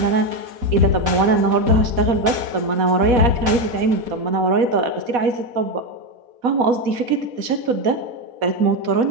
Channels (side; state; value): left; late; 4.1 ms